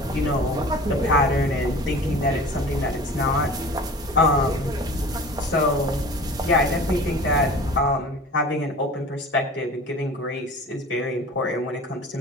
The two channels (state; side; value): normal; both; correlation 0.40